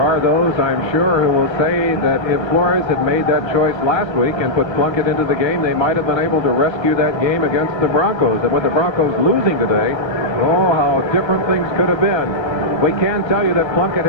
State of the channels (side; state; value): right; late; 1.3 ms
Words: those, I'm sure, who will say that if Flores had made that choice last week and put Plunkett into the game, they might have been able to rescue that game against the Broncos. And with the Broncos losing today, oh, how different things could have been. We can tell you that Plunkett